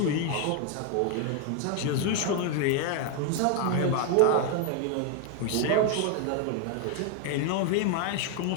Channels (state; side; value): different; both; correlation 0.01